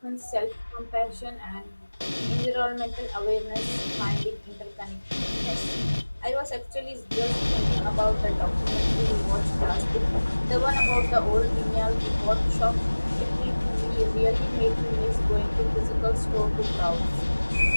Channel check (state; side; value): inverted; both; correlation -1.00